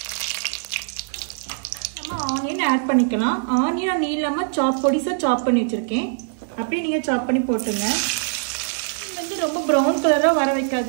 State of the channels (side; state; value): left; silent; 64 dB below the other